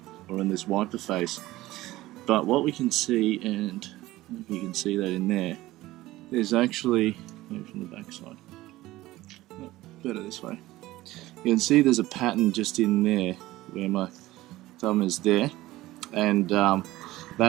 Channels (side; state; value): left; quieter; 17.3 dB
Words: or in this wiper face, but what we can see, and if you can see that in there, there's actually, maybe from the back side, no, better this way, you can see there's a pattern just in there where my thumb is there, and